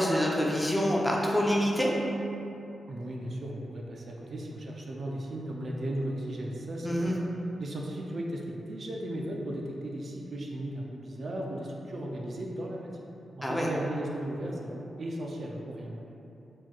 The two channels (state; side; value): normal; both; correlation 0.90